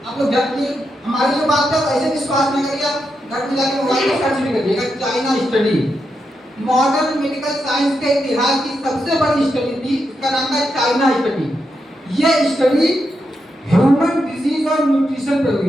आप लोग जानिए, हमारी जो बात है ऐसे विश्वास न करिए, आप घर में जाके मोबाइल में सर्च भी करिएगा China study. Modern medical science के इतिहास की सबसे बड़ी स्टडी थी, उसका नाम था चाइना स्टडी। यह स्टडी ह्यूमन डिजीज और न्यूट्रिशन पर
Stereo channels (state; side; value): normal; both; correlation 0.85